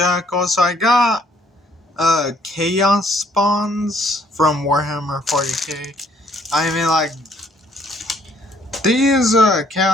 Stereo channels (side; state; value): both; normal; correlation 0.65